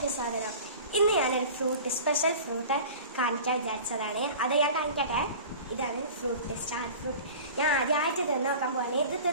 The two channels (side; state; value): both; inverted; correlation -0.39